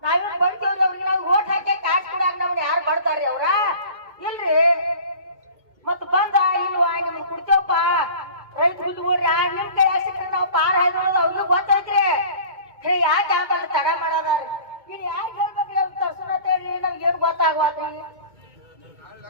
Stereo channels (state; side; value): late; left; 2.2 ms